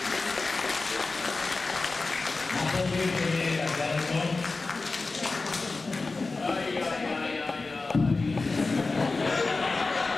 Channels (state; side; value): quieter; right; 3.7 dB